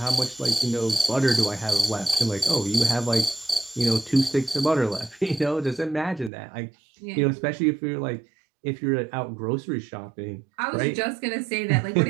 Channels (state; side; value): drops out; left; at 6.3 s